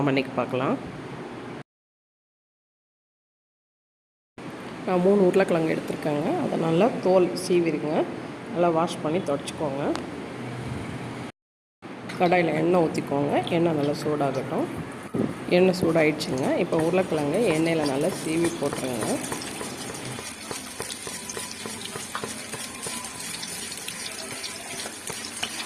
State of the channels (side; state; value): both; identical; correlation 1.00